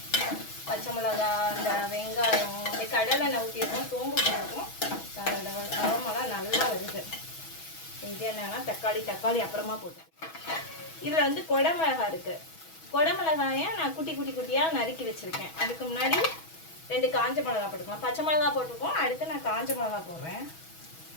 பச்சை மிளகா, அந்த வெங்காயம், இந்த கடலெண்ணெய் ஊற்றிருக்கோம், சோம்பு போட்டிருக்கோம். அதோட அரோமெல்லாம் நல்லா வருது. இது என்னன்னா தக்காளி அப்புறமா போட்டு. இதில் வந்து குடமிளகா இருக்குது. குடமிளகாயை நான் குட்டி குட்டியாக நறுக்கி வச்சுருக்கேன். அதுக்கு முன்னாடி 2 காஞ்ச மிளகா போட்டுக்கலாம். பச்சை மிளகா போட்டுருக்கோம், அடுத்து நான் காஞ்ச மிளகா போடுறேன்.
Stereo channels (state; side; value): late; right; 6.2 ms